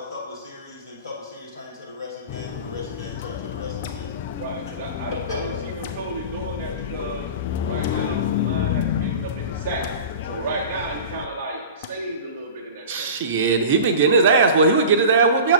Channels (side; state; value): both; inverted; correlation -0.35